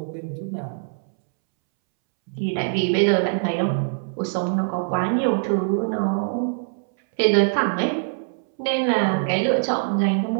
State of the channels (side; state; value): left; silent; 63 dB below the other